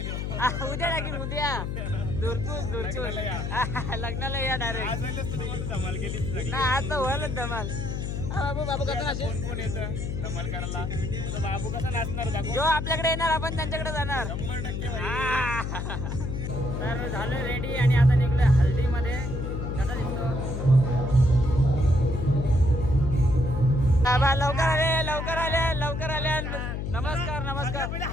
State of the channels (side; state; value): left; noise; hum, 3 dB below the sound